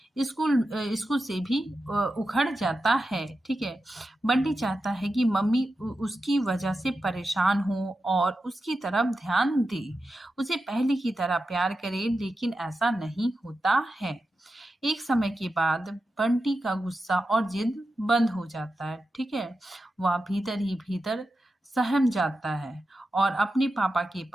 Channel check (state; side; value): normal; both; correlation 0.91